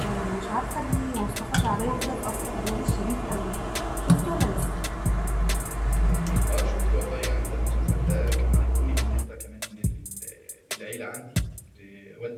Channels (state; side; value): identical; both; correlation 1.00